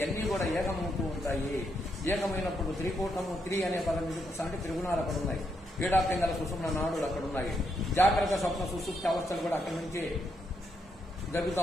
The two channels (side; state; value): both; normal; correlation 0.79